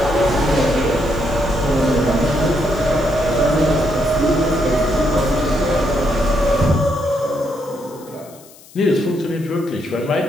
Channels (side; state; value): left; noise; hiss, 23 dB below the sound